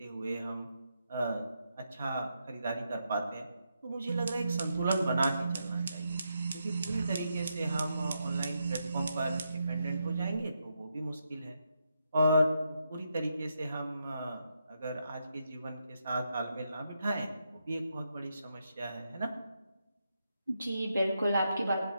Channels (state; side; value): inverted; both; correlation -0.82